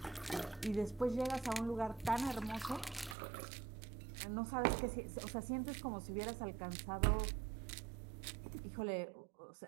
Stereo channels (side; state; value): left; drops out; at 3.2 s